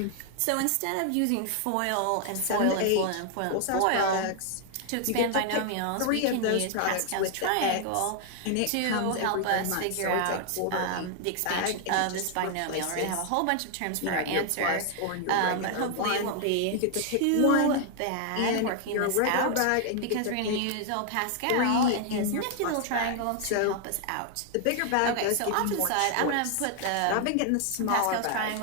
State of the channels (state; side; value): different; both; correlation 0.00